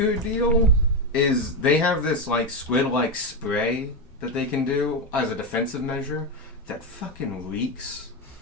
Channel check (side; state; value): both; normal; correlation 0.09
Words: deal is they have this, like, squid-like spray that they can do as a defensive measure that fucking reeks.